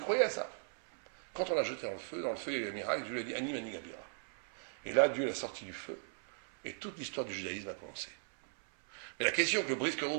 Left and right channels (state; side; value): silent; left; 53 dB below the other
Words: croyait à ça. Quand on l'a jeté dans le feu, il y a eu un miracle, Dieu lui a dit, Ani mani gabira. Et là, Dieu l'a sorti du feu. Et toute l'histoire du judaïsme a commencé. Mais la question que le Brisker